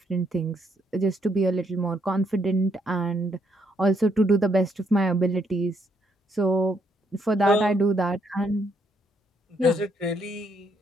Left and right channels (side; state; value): both; normal; correlation 0.73